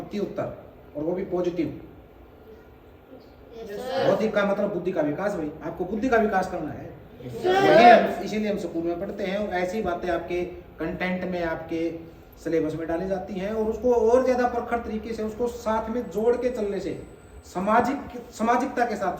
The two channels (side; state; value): both; identical; correlation 1.00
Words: और वो भी पॉजिटिव। बौद्धिक का मतलब बुद्धि का विकास। भाई आपको बुद्धि का विकास करना है, इसीलिए हम स्कूल में पढ़ते हैं। ऐसी बातें आपके कंटेंट में, आपके सिलेबस में डाली जाती हैं, और उसको और ज्यादा प्रखर तरीके से उसको साथ में जोड़ के चलने से, सामाजिकता के साथ